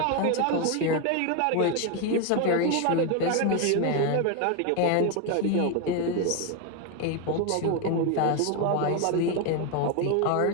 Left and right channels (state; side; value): different; both; correlation 0.02